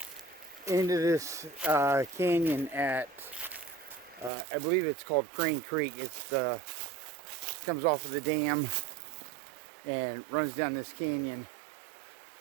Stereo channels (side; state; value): left; drops out; at 4.3 s